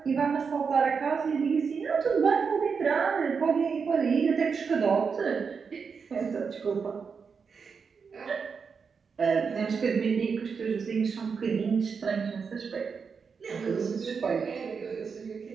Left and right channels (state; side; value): quieter; left; 5.7 dB